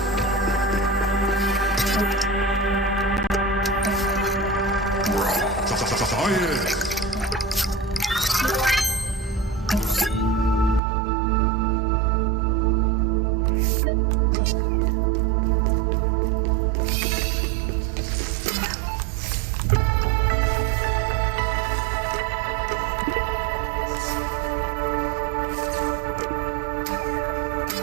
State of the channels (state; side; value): drops out; left; at 10.8 s